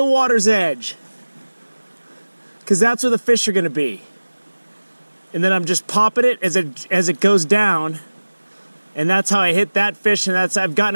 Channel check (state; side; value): inverted; both; correlation -1.00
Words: water's edge, because that's where the fish are going to be. And then I'm just popping it as it goes down. And that's how I hit that fish, and I've gotten